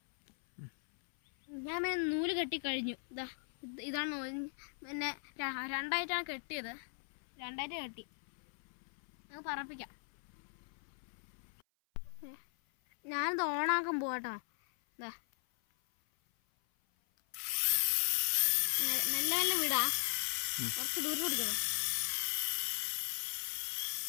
ഞാൻ പിന്നെ നൂല് കെട്ടി കഴിഞ്ഞു. ഇതാണ്. പിന്നെ രണ്ടായിട്ടാണ് കെട്ടിയത്. രണ്ടായിട്ട് കെട്ടി. നമുക്ക് പറപ്പിക്കാം. ഞാനിത് ഓണാക്കാൻ പോവാട്ടോ. നല്ല നല്ല വീടാ, കുറച്ച് ദൂരം പിടിക്കണോ,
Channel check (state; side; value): silent; right; 52 dB below the other